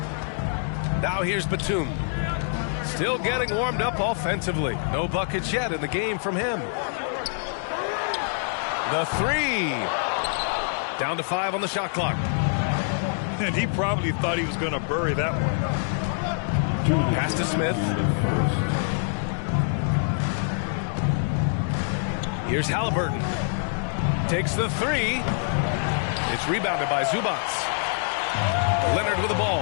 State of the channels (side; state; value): right; silent; digital silence